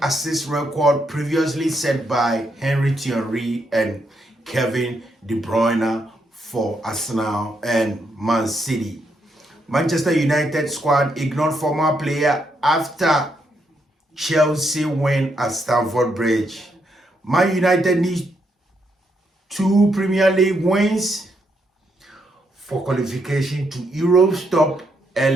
assist record previously set by Thierry and Kevin De Bruyne for Arsenal and Man City. Manchester United squad ignored former player after Chelsea win at Stamford Bridge. Man United needs 2 Premier League wins for qualification to Europe's top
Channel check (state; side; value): normal; both; correlation 0.78